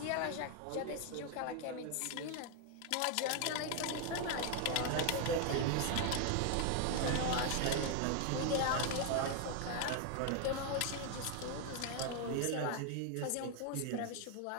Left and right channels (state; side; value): different; both; correlation 0.00